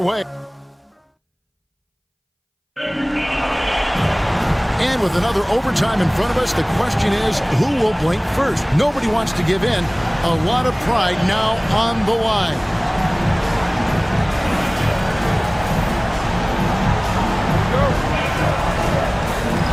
And with another overtime in front of us, the question is, who will blink first? Nobody wants to give in. A lot of pride now on the line.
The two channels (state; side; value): identical; both; correlation 1.00